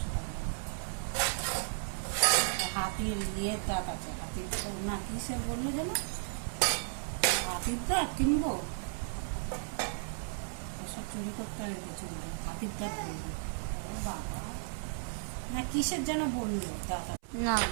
টাকা। হাতির ইয়ের দাঁত আছে, হাতির না কিসের বললো যেন, হাতির দাঁত কিনবো, সব চুরি করতে হবে চুলটা, হাতির দাঁত বলবো। ও বাবা, না কিসের যেন বললো দাঁত না।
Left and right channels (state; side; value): silent; left; 55 dB below the other